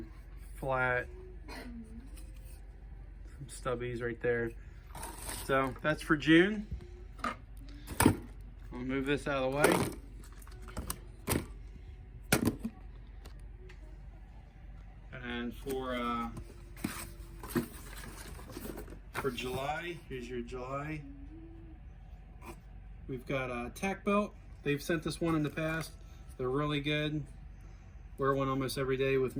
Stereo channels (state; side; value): identical; both; correlation 1.00